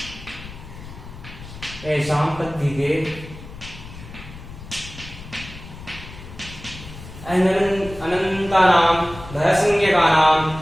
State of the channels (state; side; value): noise; left; rumble, 15 dB below the sound